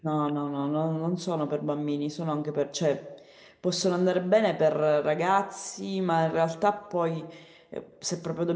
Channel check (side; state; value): both; identical; correlation 1.00